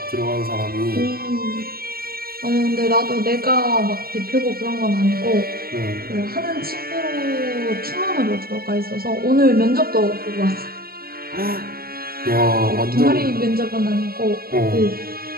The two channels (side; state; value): left; late; 0.44 ms